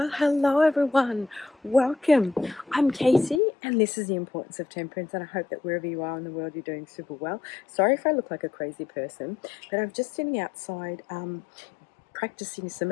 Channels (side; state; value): right; drops out; at 3.4 s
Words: hello everyone. Welcome. I'm Casey, and this is the importance of temperance. And I hope that wherever you are in the world, you're doing super well. Sorry if I look like a crazy person, but I'm just sitting outside practicing some